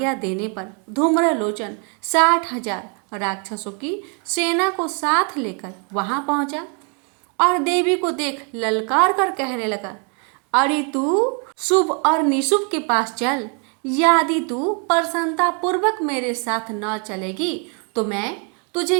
देने पर धूम्रलोचन 60,000 राक्षसों की सेना को साथ लेकर वहां पहुंचा और देवी को देख ललकार कर कहने लगा, अरे तू शुभ और निशुभ के पास चल। यदि तू प्रसन्नता पूर्वक मेरे साथ न चलेगी तो मैं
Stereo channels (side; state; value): left; quieter; 37.7 dB